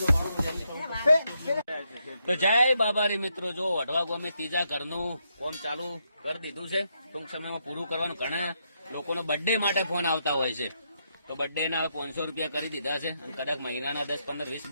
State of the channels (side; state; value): both; inverted; correlation -0.79